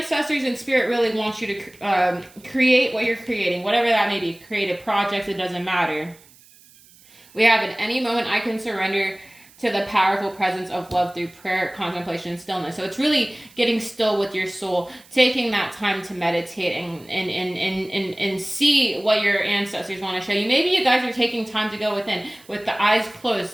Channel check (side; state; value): right; noise; hiss, 26 dB below the sound